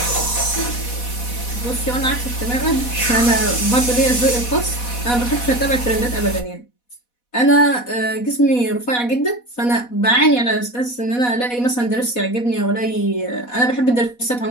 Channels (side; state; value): right; late; 4.1 ms